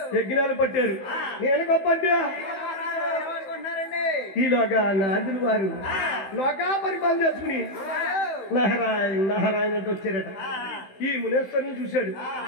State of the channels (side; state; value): right; late; 16 ms